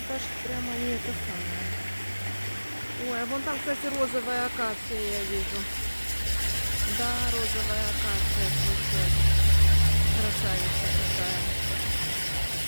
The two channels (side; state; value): both; inverted; correlation -1.00